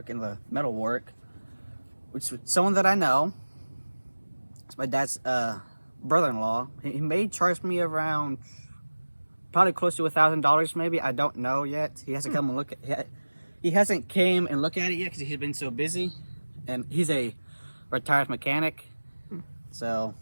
and the metal work, which is someone that I know. It's my dad's brother-in-law. He may charge me around probably close to $1,000 maybe. I don't know yet. He hasn't come and look at he hasn't came and looked at it yet because he's been so busy, and he's a retired mechanic. So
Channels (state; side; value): inverted; both; correlation -1.00